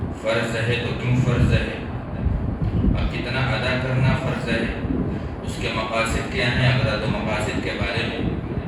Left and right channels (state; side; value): identical; both; correlation 1.00